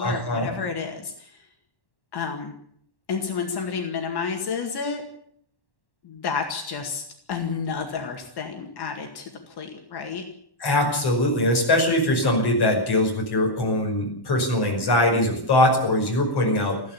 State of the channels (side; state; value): right; late; 1.1 ms